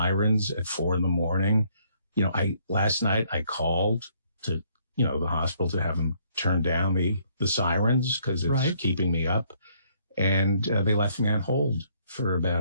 at 4 a.m. You know, last night I called to, the hospital to have them turn down the sirens because it's keeping me up. And they left me on hold for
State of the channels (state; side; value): inverted; both; correlation -0.67